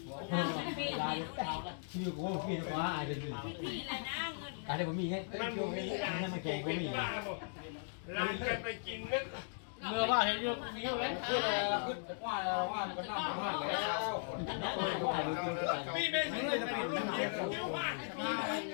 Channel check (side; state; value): right; silent; digital silence